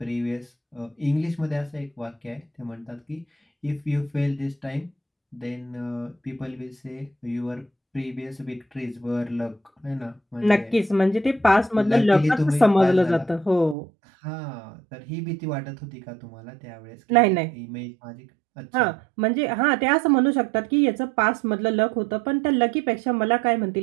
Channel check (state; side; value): drops out; left; at 13.8 s